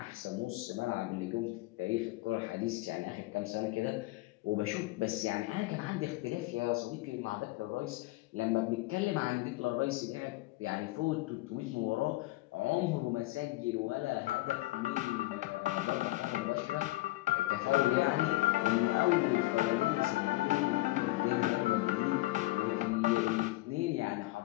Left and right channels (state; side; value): quieter; right; 19.6 dB